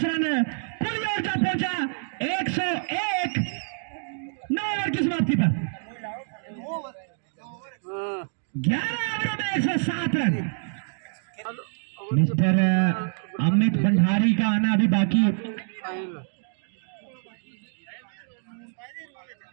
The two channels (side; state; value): left; silent; digital silence